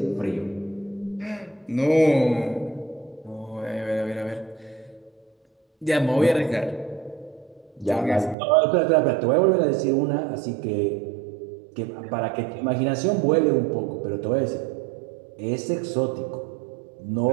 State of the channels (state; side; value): drops out; left; at 8.3 s